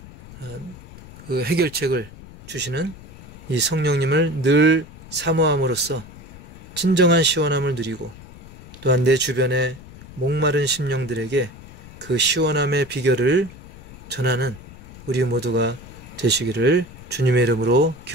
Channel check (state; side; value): noise; left; rumble, 17 dB below the sound